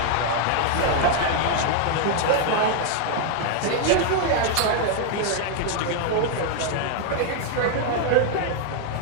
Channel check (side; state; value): both; different; correlation 0.00